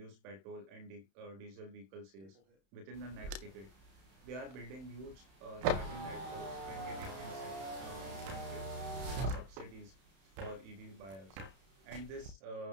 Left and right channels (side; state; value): left; late; 31 ms